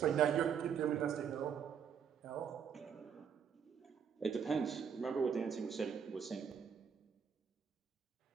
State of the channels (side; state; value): left; quieter; 7.4 dB